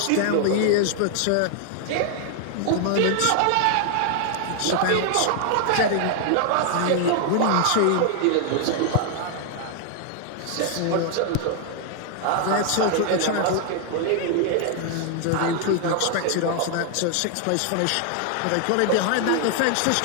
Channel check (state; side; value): different; both; correlation 0.00